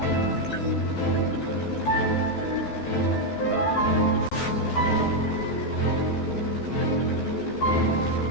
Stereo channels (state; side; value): late; right; 14 ms